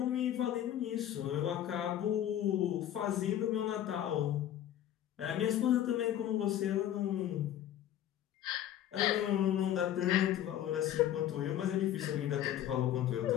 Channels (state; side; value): quieter; right; 11.4 dB